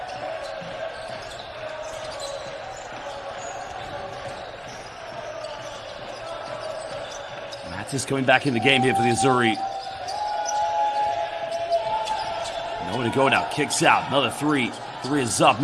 Matis coming back in the game here for the Azzurri. Nowhere to go now. Kicks out. Another 3. 3 is up.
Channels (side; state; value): both; identical; correlation 1.00